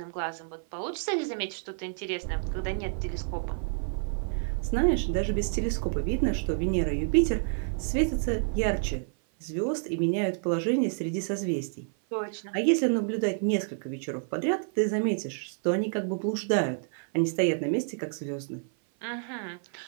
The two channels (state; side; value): silent; left; 55 dB below the other